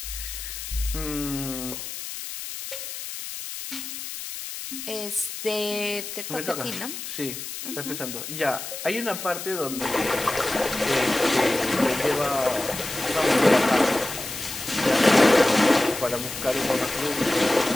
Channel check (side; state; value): left; noise; hiss, 8 dB below the sound